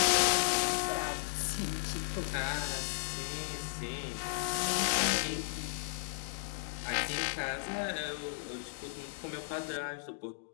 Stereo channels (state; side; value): silent; right; digital silence